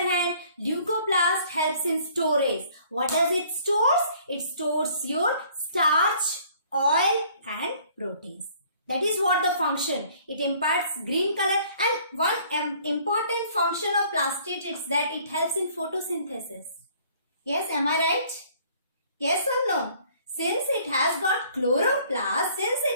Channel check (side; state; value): both; inverted; correlation -0.57